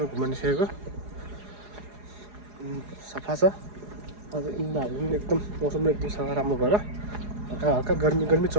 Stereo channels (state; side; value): late; left; 4.8 ms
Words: घुम्नु निस्केको। सफा छ आज इन्दाहरू पनि एकदम मौसम एकदम सफा राम्रो भएर हल्का हल्का गर्मी